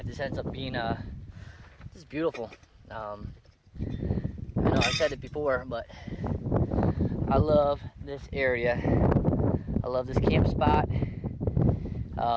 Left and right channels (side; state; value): both; identical; correlation 1.00